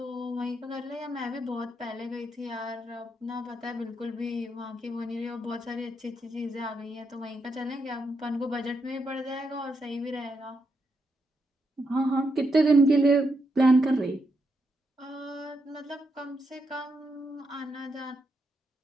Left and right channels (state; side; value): normal; both; correlation 0.81